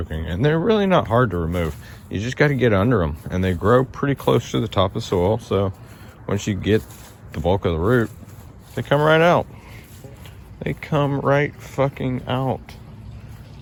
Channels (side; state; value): both; identical; correlation 1.00